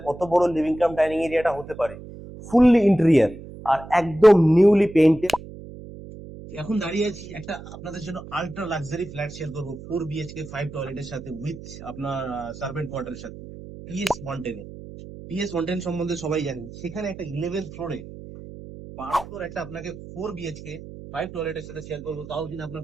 কত বড় লিভিং কাম ডাইনিং এরিয়াটা হতে পারে। ফুললি ইন্টেরিয়ার আর একদম নিউলি পেইন্টেড। এখন দাঁড়িয়ে আছি একটা আপনাদের জন্য আল্ট্রা লাক্সারি ফ্ল্যাট শেয়ার করবো, 4 BHK 5 টয়লেটের সাথে, উইথ আপনার সার্ভেন্ট কোয়ার্টারের সাথে, PS 110। PS 110 সম্বন্ধে সবাই জানেন। সেখানে একটা 11th ফ্লোরে 12 ফ্লোর একটা আপনাকে 4 BHK 5 টয়লেটের সাথে শেয়ার করবো, তাও কিন্তু আপনার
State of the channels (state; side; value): noise; right; hum, 14 dB below the sound